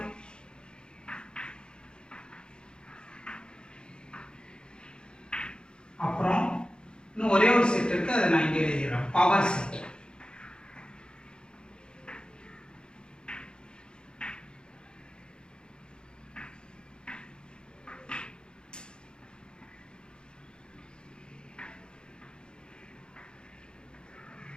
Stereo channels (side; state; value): right; late; 0.049 ms